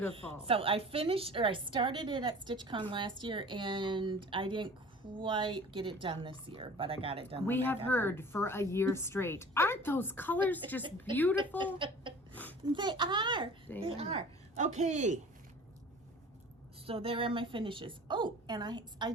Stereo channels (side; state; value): both; normal; correlation 0.44